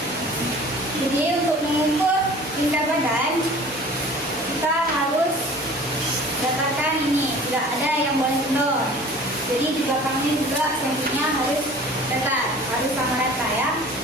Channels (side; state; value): both; normal; correlation 0.45